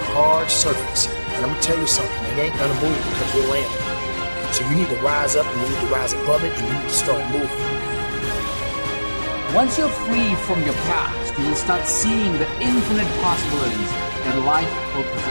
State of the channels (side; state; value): both; inverted; correlation -1.00